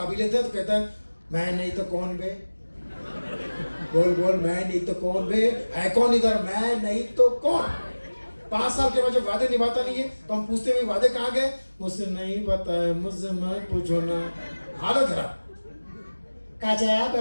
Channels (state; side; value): inverted; both; correlation -1.00